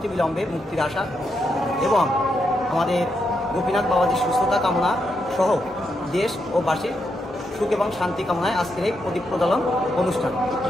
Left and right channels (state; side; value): normal; both; correlation 0.82